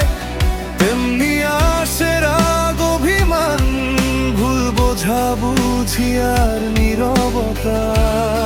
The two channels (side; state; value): both; identical; correlation 1.00